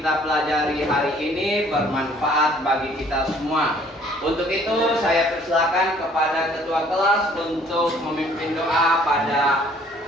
pelajari hari ini bermanfaat bagi kita semua. Untuk itu saya persilakan kepada ketua kelas untuk memimpin doa pada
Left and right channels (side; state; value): both; normal; correlation 0.58